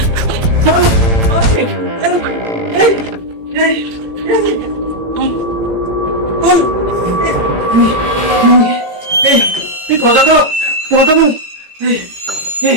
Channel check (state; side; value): late; left; 18 ms